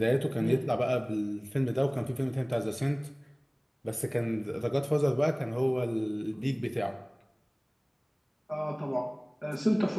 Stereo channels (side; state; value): both; identical; correlation 1.00